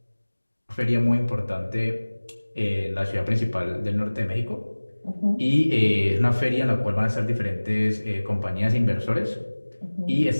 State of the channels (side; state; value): both; inverted; correlation -1.00